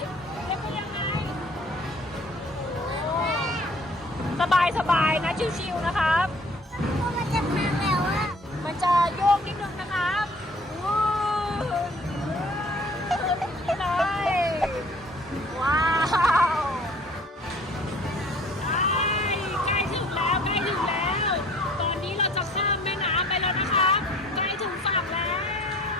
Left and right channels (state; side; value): normal; both; correlation 0.54